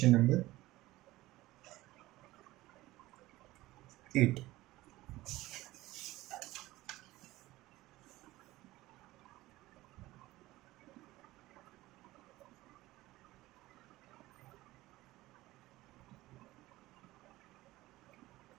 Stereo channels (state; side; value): quieter; left; 17.9 dB